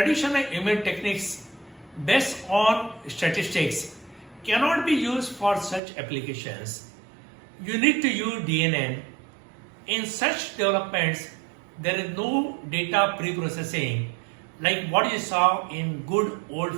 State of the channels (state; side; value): drops out; left; at 5.8 s